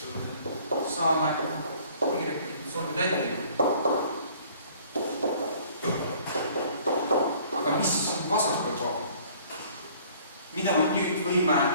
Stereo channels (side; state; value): both; inverted; correlation -0.55